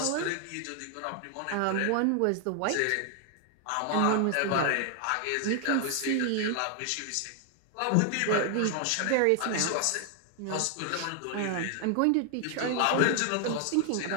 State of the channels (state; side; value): different; both; correlation 0.00